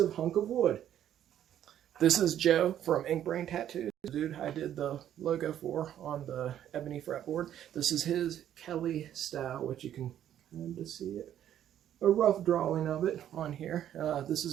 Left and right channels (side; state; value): left; quieter; 10.8 dB